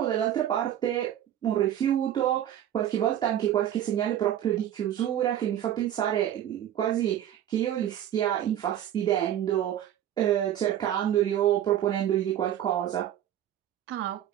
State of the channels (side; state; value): left; quieter; 11.2 dB